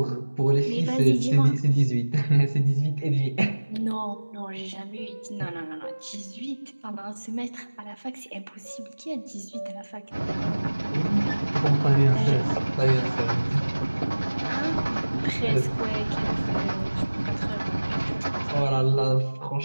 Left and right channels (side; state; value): both; inverted; correlation -1.00